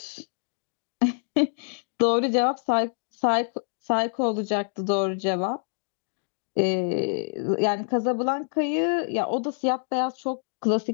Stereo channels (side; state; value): right; silent; digital silence